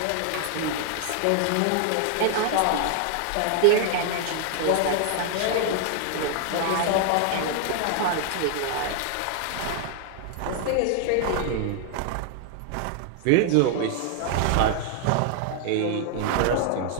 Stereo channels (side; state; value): both; different; correlation 0.00